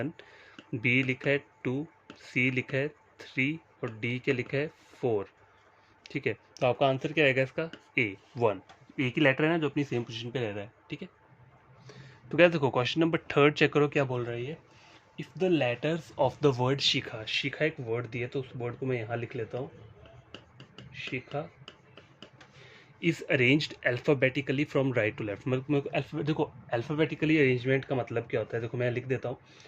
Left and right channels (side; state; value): both; identical; correlation 1.00